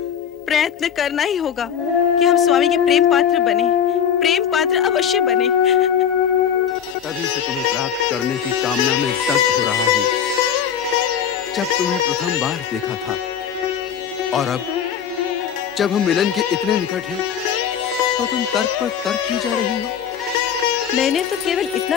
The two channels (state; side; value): quieter; right; 8.4 dB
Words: प्रयत्न करना ही होगा कि हम स्वामी के प्रेम पात्र बने, प्रेम पात्र अवश्य बने। तभी से तुम्हें प्राप्त करने की कामना में दग्ध हो रहा हूँ। जब तुम्हें प्रथम बार देखा था और अब जब हम मिलन के इतने निकट हैं, तो तुम तर्क पर तर्क की जा रही हो। मैंने तो केवल